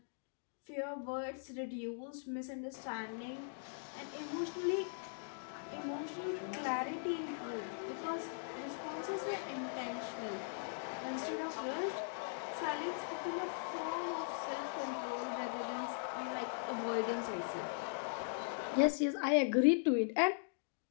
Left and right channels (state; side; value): silent; right; digital silence